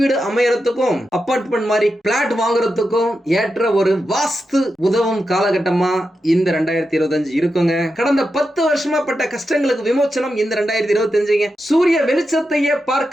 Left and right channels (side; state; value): both; normal; correlation 0.88